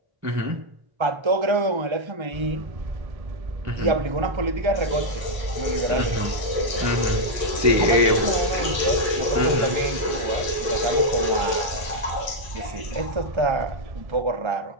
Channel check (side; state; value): left; late; 1.3 ms